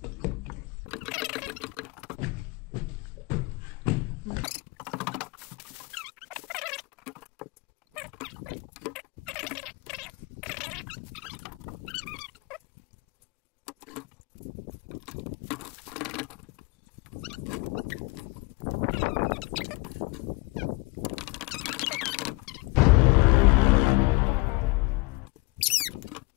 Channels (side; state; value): right; quieter; 23.8 dB